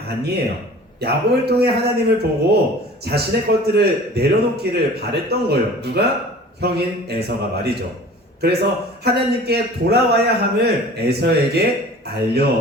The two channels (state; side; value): normal; both; correlation 0.44